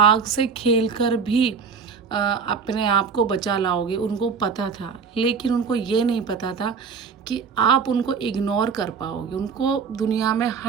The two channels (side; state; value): left; quieter; 5.8 dB